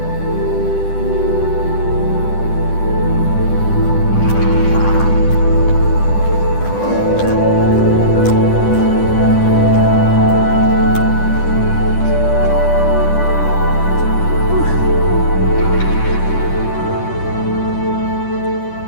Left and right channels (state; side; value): late; right; 10 ms